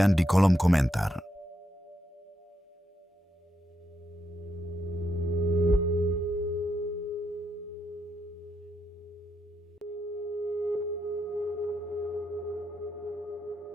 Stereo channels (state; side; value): normal; both; correlation 0.81